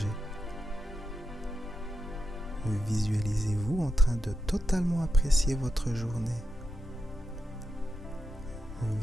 Visualisez-vous en train de totalement apprécier votre journée.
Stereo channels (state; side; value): normal; both; correlation 0.87